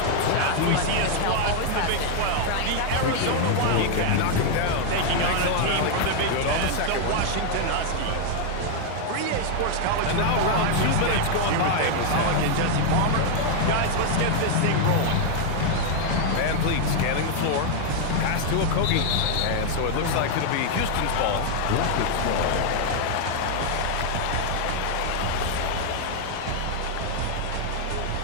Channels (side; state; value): both; different; correlation 0.00